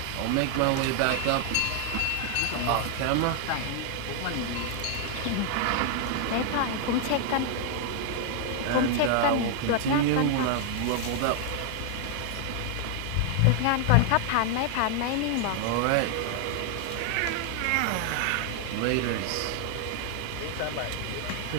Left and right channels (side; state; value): both; different; correlation 0.00